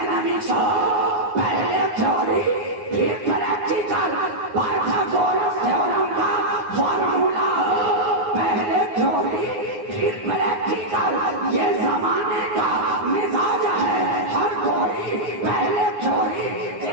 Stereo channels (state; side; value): late; left; 9.6 ms